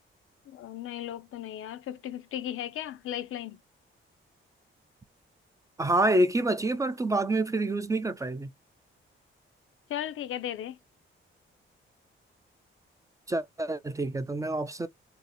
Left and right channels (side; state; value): both; normal; correlation 0.64